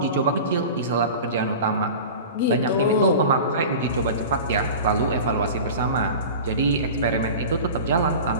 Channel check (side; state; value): both; inverted; correlation -0.34